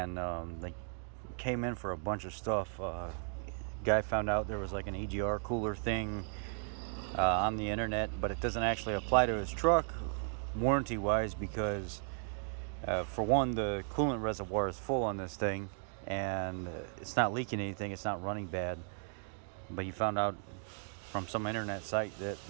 they came in for a bunch of stuff. Guy found out there was like an EGR cooler thing on the internet, but it doesn't actually apply to his truck warranty wise because for one, the coolant reservoir is full on this thing, and it's not leaking anything, it's not running bad. But he found out from some internet site that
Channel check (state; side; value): silent; left; 54 dB below the other